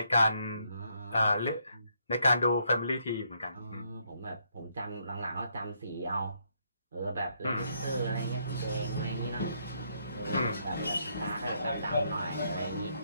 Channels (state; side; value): inverted; both; correlation -0.73